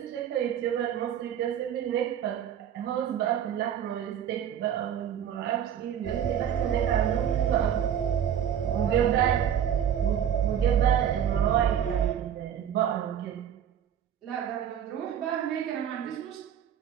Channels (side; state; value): left; quieter; 9.4 dB